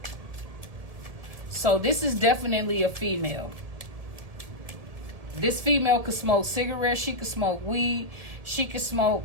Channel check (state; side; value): late; left; 1.7 ms